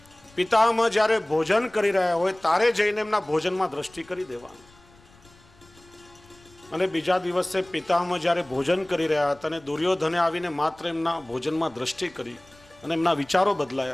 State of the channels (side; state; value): left; noise; rumble, 28 dB below the sound